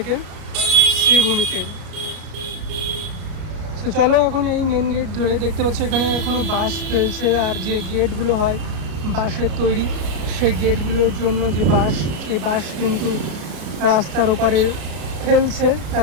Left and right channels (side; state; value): left; late; 33 ms